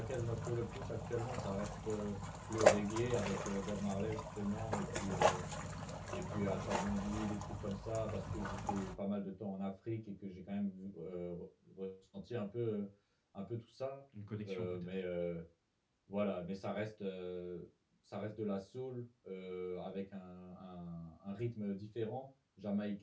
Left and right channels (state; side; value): identical; both; correlation 1.00